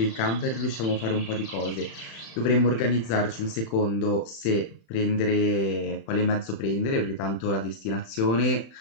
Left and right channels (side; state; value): right; late; 36 ms